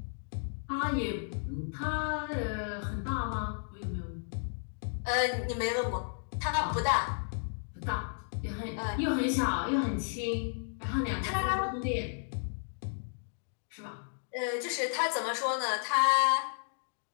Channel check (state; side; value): silent; right; digital silence